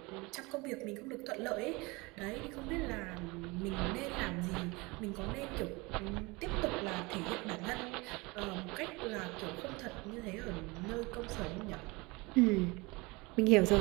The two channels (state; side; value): quieter; left; 24.9 dB